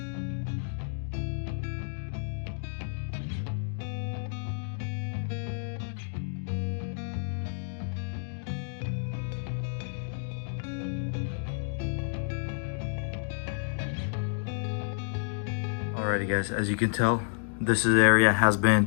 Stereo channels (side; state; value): right; silent; digital silence